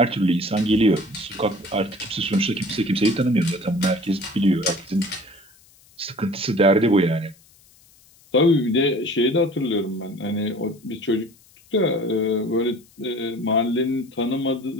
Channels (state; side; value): noise; left; hiss, 29 dB below the sound